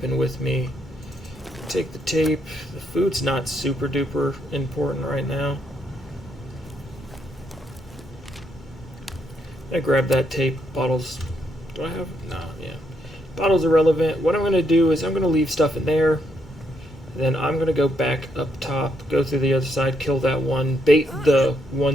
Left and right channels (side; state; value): both; normal; correlation 0.76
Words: with me. Take the tape. The food's not super duper important right now. I grab that tape. Bottles. Do I have? No, yeah. Bottles are relevant. What I'm going to do is I'm going to leave stuff in there. Then I'm going to go back up top, go through the other side, kill that one, bait the